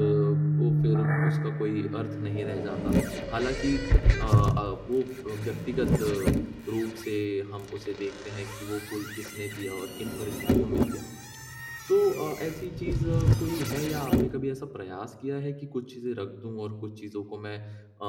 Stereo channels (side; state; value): both; identical; correlation 1.00